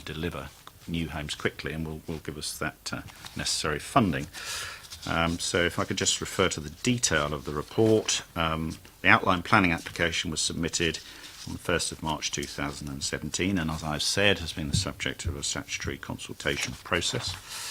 to deliver new homes quickly, and will give us that necessary funding. So if I could just refer to the detail of the report. The outline planning application was submitted on the 1st of March 2017, and as I've said, has been the subject of a statutory consultation process.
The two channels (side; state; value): both; identical; correlation 1.00